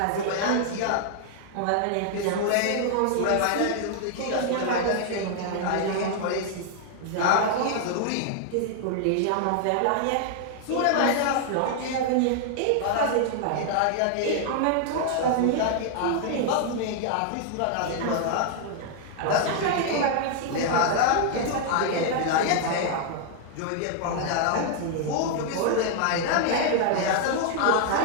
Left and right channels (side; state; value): both; different; correlation 0.00